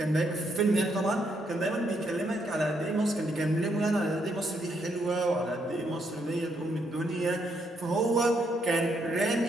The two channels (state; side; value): normal; both; correlation 0.75